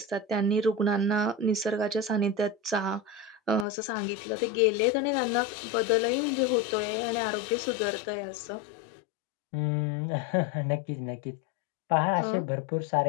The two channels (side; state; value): right; drops out; at 3.7 s